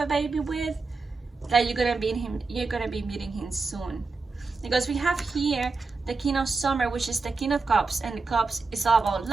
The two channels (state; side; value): quieter; left; 4.1 dB